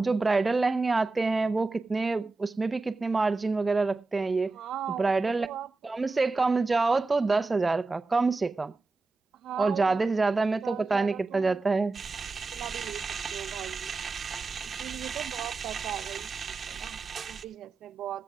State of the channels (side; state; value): left; quieter; 3.7 dB